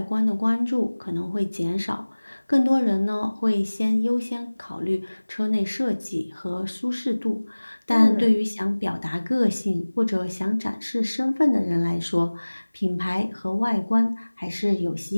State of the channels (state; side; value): inverted; both; correlation -1.00